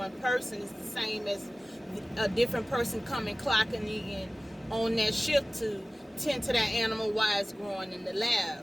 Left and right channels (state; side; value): normal; both; correlation 0.97